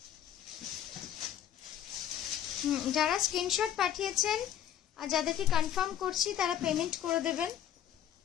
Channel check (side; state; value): right; quieter; 10.4 dB